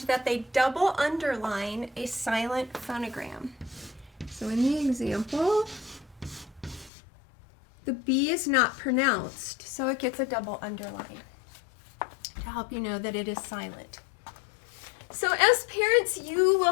that they double underline a silent phonogram. So in the example, the B is not pronounced, so it gets a double underline to help you know that it is silent. So as parents, you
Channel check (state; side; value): drops out; right; at 6.9 s